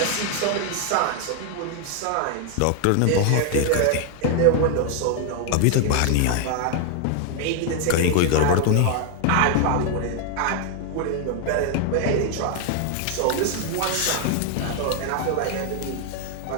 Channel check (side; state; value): both; different; correlation 0.00